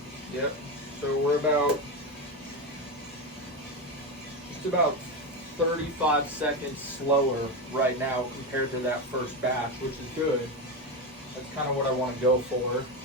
Yep. So we're just about 35 seconds slower right now compared to that first batch, which is good. That's kind of what I want to go for.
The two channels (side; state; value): both; normal; correlation 0.15